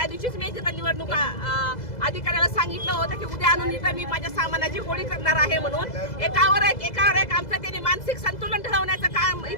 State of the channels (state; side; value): late; right; 2.0 ms